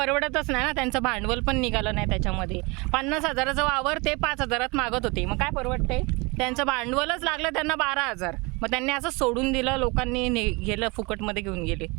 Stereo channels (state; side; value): quieter; left; 27.1 dB